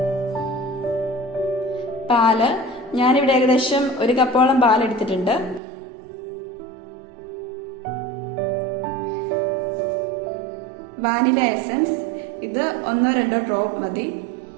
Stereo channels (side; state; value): left; drops out; at 5.6 s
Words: പാല്. ഞാനിവിടെ ഏകദേശം 1 കപ്പോളം പാലെടുത്തിട്ടുണ്ട്. Vanilla essence. ഇത് 1-2 ഡ്രോപ്പ് മതി.